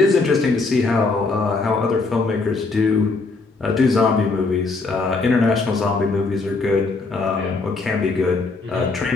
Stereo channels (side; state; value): right; quieter; 3.8 dB